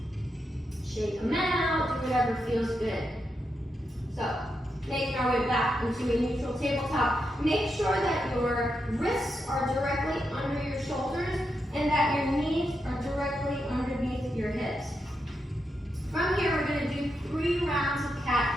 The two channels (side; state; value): both; normal; correlation 0.84